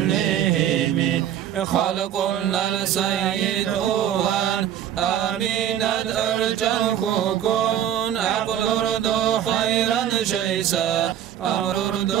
خلق السيد أوان آمينة أرجل كون عقل أردو خيرا شيسا أمر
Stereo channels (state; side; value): quieter; left; 10.6 dB